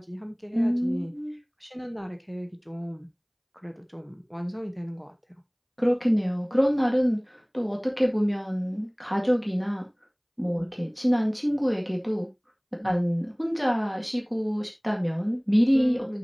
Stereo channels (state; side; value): identical; both; correlation 1.00